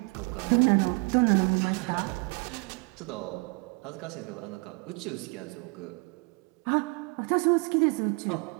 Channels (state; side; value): quieter; left; 30.6 dB